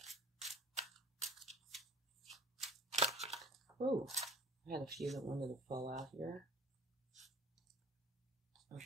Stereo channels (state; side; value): normal; both; correlation 0.45